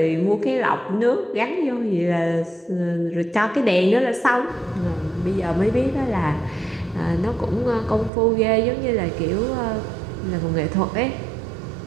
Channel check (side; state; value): left; drops out; at 8.1 s